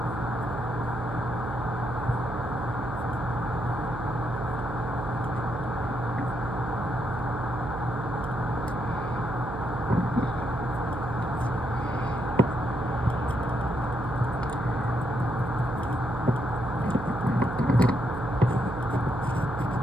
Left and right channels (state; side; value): noise; right; hum, 7 dB below the sound